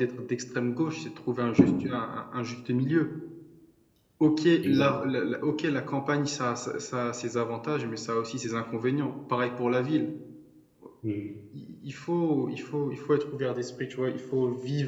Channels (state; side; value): identical; both; correlation 1.00